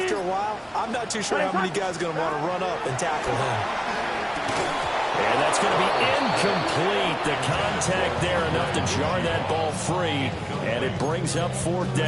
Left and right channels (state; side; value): identical; both; correlation 1.00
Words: a while, I'm not too sure how many guys are going to want to run up and tackle him. And that's going to be incomplete. The contact there enough to jar that ball free, and it brings up 4th